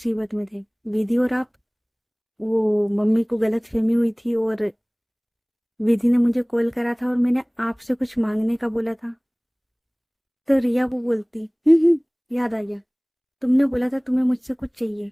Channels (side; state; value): both; identical; correlation 1.00